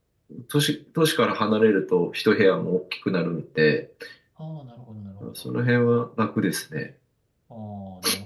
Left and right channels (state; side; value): identical; both; correlation 1.00